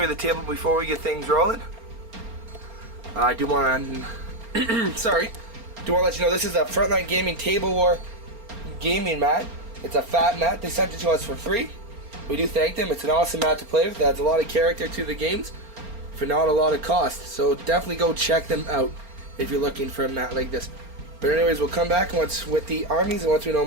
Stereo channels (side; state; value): left; late; 4.3 ms